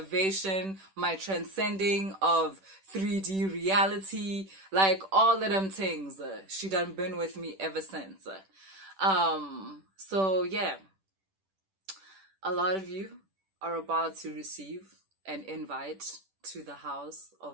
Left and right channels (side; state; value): left; late; 10 ms